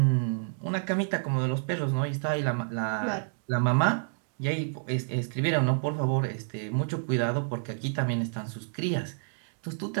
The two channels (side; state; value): left; silent; digital silence